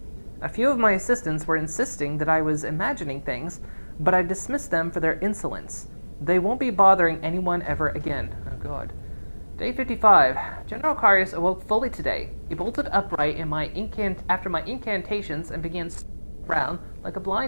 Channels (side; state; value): both; inverted; correlation -1.00